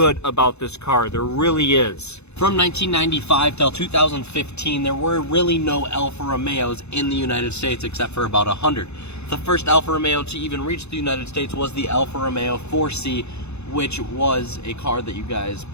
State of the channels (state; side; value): late; right; 0.81 ms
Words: about this car, there really is. From 1995 till 2015, there were really no Alfa Romeos in the United States except for about 100. The first Alfa Romeo to even reach the United States was the Alfa Romeo 4C, which was a car that you guys